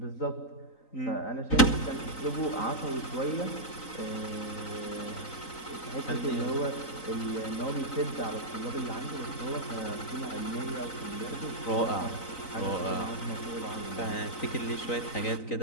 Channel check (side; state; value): right; late; 3.9 ms